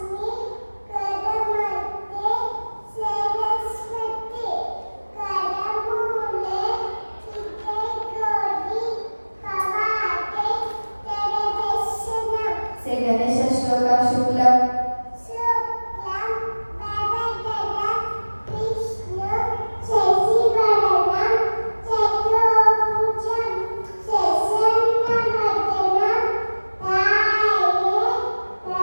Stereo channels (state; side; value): inverted; both; correlation -1.00